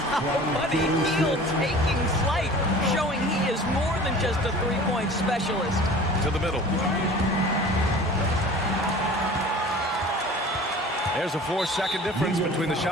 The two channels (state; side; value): normal; both; correlation 0.43